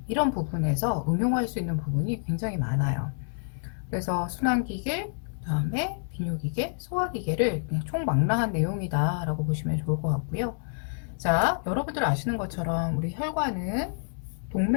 이런 부분에서 응용할 수 있는 부분이 굉장히 많아요. 그래서 순환기계, 그다음에 비뇨기계, 소화기계를 그냥 총망라한 내용이다 라고 보시면 좋을 것 같고요. 자, 여러분들 아시는 것처럼 우리 혈관은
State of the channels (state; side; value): silent; right; digital silence